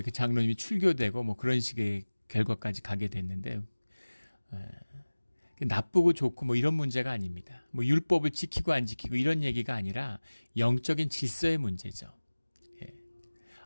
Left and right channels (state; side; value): inverted; both; correlation -1.00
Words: 그 장로님이 출교되고 뭐 그런 식의 결과까지 가게 됐는데 나쁘고 좋고 뭐 이런 문제가 아닙니다. 뭐 율법을 지키고 안 지키고 이런 얘기가 아니라 영적인 질서의 문제죠.